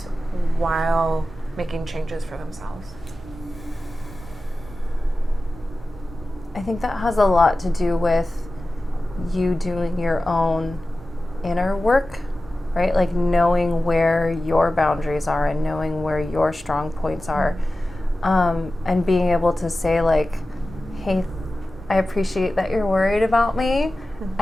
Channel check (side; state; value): right; noise; hum, 19 dB below the sound